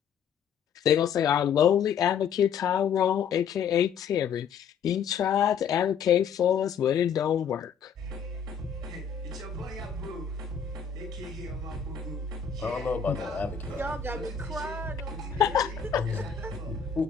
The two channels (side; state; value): right; quieter; 7.4 dB